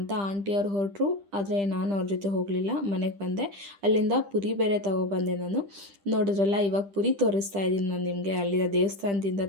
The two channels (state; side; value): late; left; 10 ms